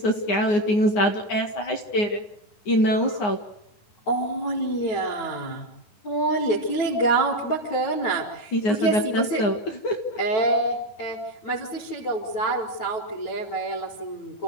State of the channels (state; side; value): late; right; 9.1 ms